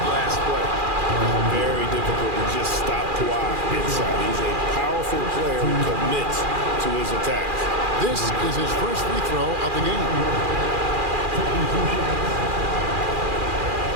last play. Very difficult to just stop Kawhi inside. He's a powerful player who commits to his attacks. This is his first free throw of the game.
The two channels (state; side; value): late; left; 2.4 ms